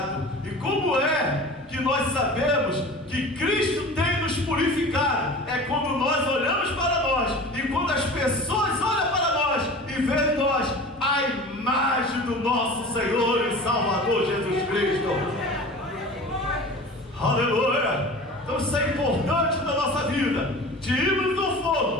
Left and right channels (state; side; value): normal; both; correlation 0.37